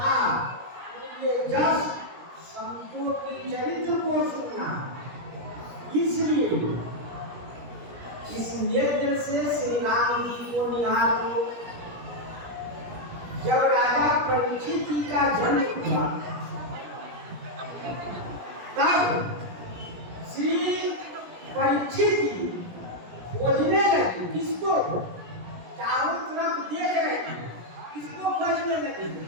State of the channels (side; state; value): left; late; 17 ms